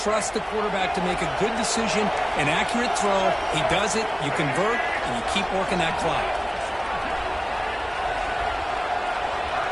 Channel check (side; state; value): both; identical; correlation 1.00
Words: the quarterback to make a good decision, an accurate throw. He does it. You convert, and you keep working that clock.